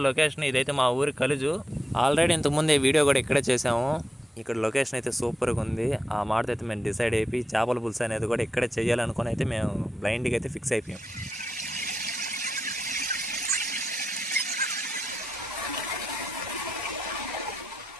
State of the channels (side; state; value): both; normal; correlation 0.87